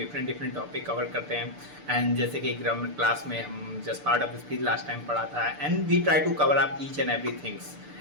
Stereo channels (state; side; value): late; left; 6.8 ms